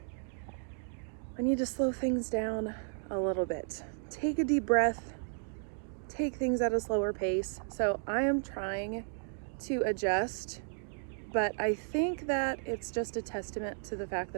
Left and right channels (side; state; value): left; silent; digital silence